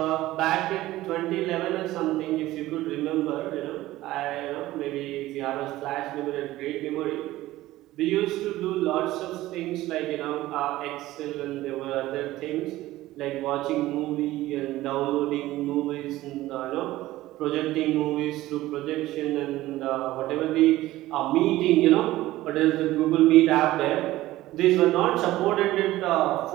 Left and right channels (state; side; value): quieter; left; 16.4 dB